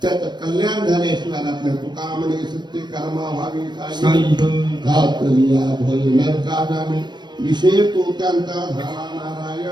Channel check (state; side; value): late; left; 0.21 ms